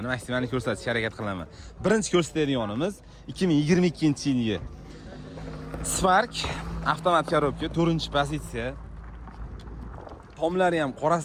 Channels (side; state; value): both; identical; correlation 1.00